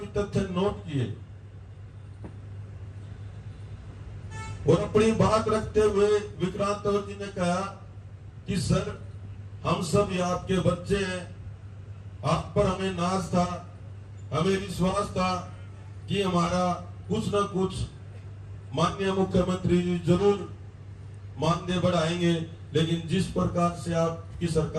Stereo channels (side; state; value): both; identical; correlation 1.00